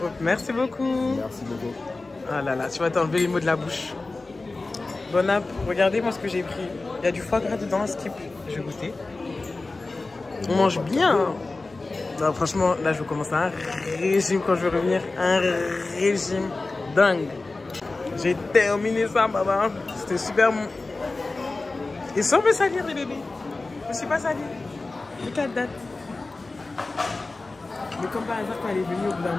Merci beaucoup. Merci beaucoup. Ah là là, tu vas t'enlever les mots de la bouche. Bon app, regardez moi ce que j'ai pris. Il y a du foie gras dedans, skip. Je vais goûter. On mange bien. Hein. Non, franchement, là je vais commencer un régime quand je vais revenir. Un régime dingue. J'ai terminé ça, maman. C'était super bon. Et sans me salir, les bébés. Je me suis pas salie. Les 4 dates. Mais comme par hasard, quand elle est venue au bout d'un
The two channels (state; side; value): quieter; right; 3.4 dB